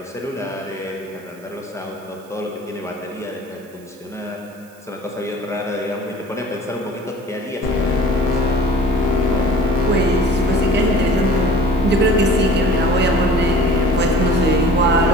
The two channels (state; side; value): noise; right; hiss, 27 dB below the sound